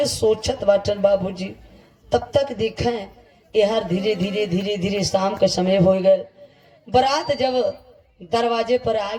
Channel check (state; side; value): identical; both; correlation 1.00